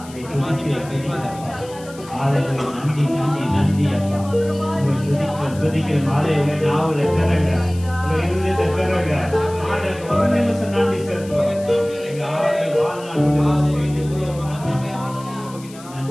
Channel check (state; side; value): noise; left; hiss, 20 dB below the sound